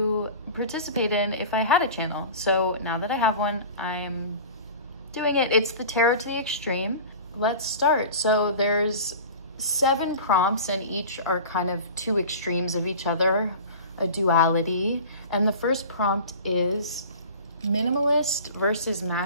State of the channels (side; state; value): both; inverted; correlation -0.38